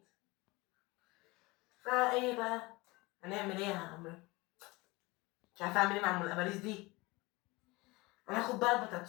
بقى هنعمل ايه يا عم؟ مش عارفه اعمل ايه مع ام الاباريس دي. هناخد بقى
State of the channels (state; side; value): quieter; right; 23.1 dB